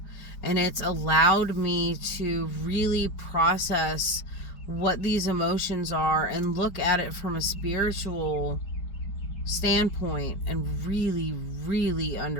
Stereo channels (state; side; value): late; right; 4.9 ms